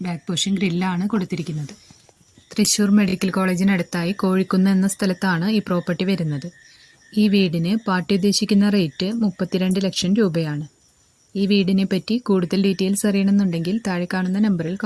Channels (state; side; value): identical; both; correlation 1.00